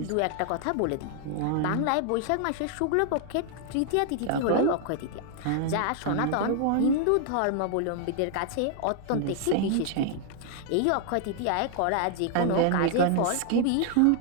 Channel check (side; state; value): both; different; correlation 0.00